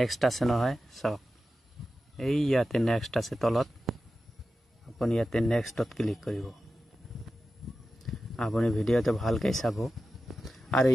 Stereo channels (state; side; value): normal; both; correlation 0.93